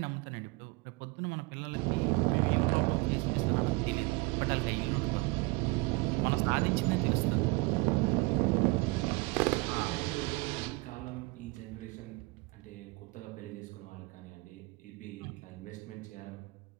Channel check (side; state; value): left; quieter; 23.9 dB